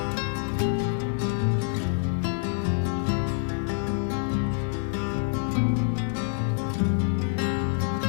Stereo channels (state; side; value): silent; right; digital silence